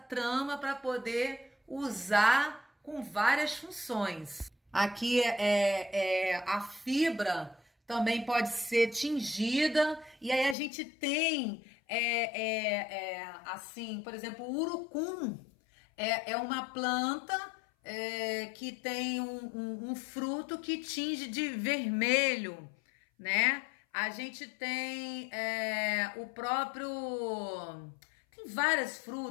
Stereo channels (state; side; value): drops out; right; at 10.6 s